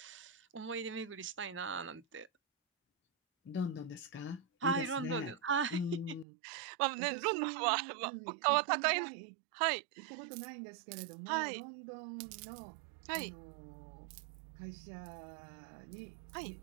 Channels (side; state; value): left; drops out; at 6.2 s